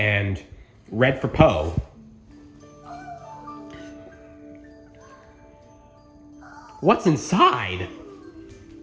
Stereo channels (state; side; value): identical; both; correlation 1.00